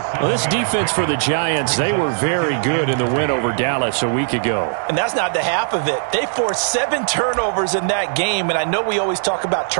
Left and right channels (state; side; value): silent; left; 67 dB below the other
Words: Well, this defense for the Giants, they were very good in the win over Dallas a week ago. And that's not the half of it. They forced 7 turnovers in that game. And I know we always talk about